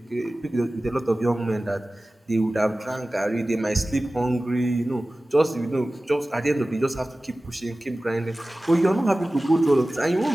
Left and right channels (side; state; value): both; normal; correlation 0.97